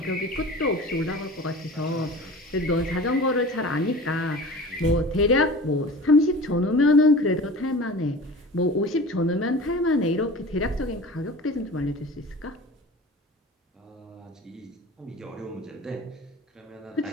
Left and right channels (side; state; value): both; normal; correlation 0.38